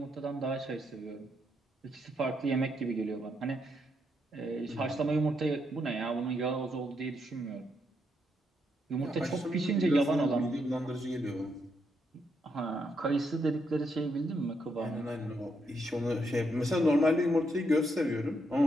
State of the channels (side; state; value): both; normal; correlation 0.78